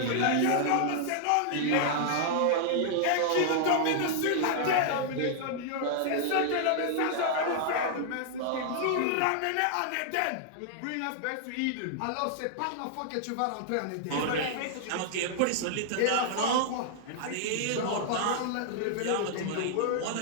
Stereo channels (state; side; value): different; both; correlation -0.01